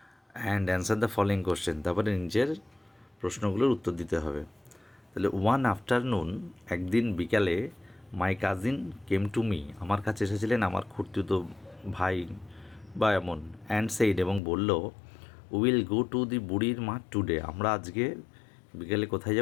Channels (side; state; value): right; drops out; at 14.4 s